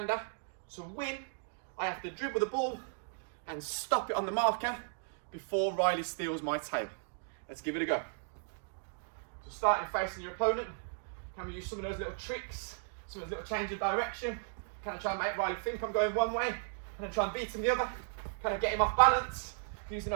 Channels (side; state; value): left; silent; digital silence